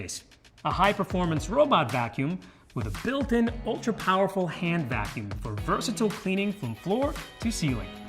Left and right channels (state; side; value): identical; both; correlation 1.00